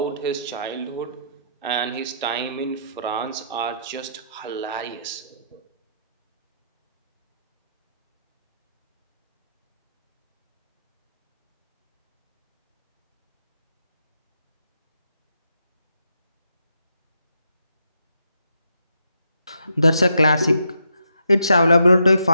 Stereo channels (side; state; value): both; inverted; correlation -0.78